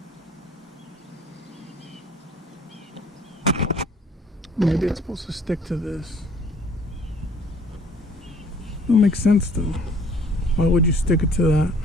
Maybe it's supposed to stick to this. Don't make sense though. Why would you stick it to that?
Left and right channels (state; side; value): normal; both; correlation 0.56